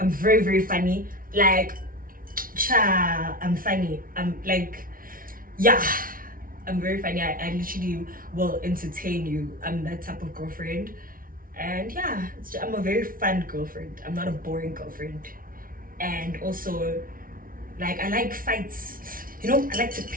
very, very funny. Like, I'm funny. I'm like, yeah, I'm very funny. I literally will entertain you. I'm that type of girlfriend. And yeah, I'm a very fun girlfriend. I'm not a boring girlfriend. And also, like, I like fights. You know, I like to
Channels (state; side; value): late; left; 0.41 ms